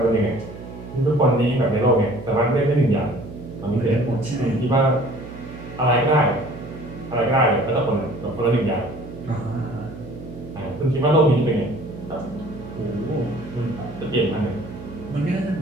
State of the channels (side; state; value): right; noise; hum, 14 dB below the sound